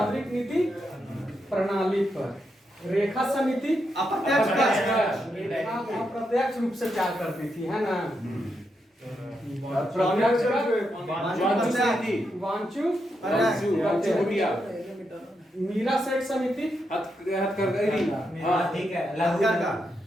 नीति प्रणाली पर। रेखा समिति अप्रत्यक्ष रूप से प्यार करती थी, है ना। वांचू मीरा सेठ समिति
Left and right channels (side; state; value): both; normal; correlation 0.83